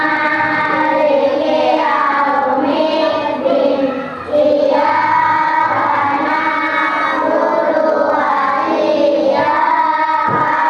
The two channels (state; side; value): identical; both; correlation 1.00